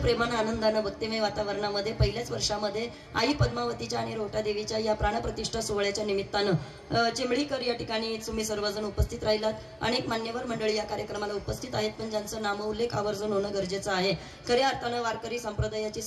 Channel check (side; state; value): both; identical; correlation 1.00